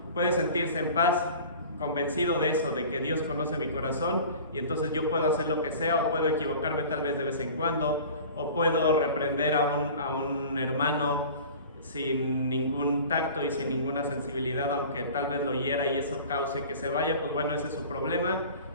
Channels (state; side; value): inverted; both; correlation -0.41